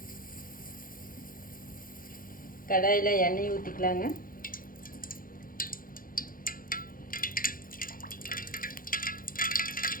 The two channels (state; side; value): late; right; 0.41 ms